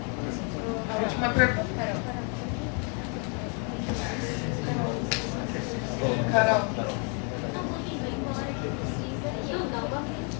A última pergunta. Carol.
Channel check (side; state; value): right; quieter; 37.6 dB